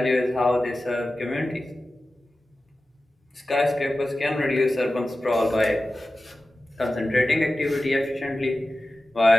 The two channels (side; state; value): both; normal; correlation 0.95